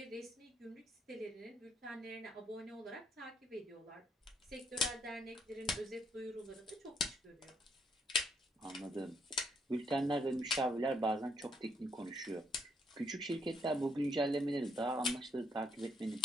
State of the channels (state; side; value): normal; both; correlation 0.73